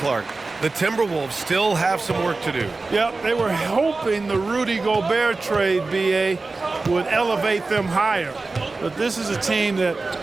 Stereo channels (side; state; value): left; quieter; 3.6 dB